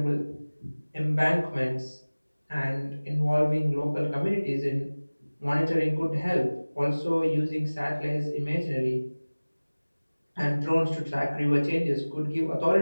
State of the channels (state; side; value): inverted; both; correlation -1.00